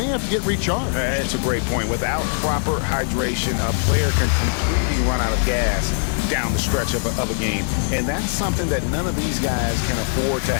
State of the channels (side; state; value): right; silent; digital silence